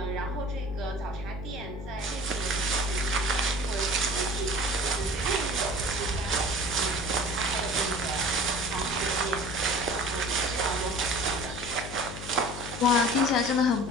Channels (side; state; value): left; noise; hum, 10 dB below the sound